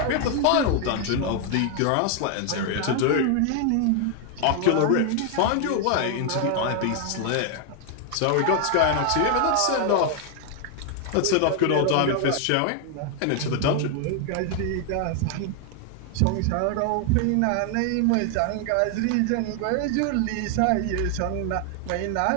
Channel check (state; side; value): different; both; correlation 0.00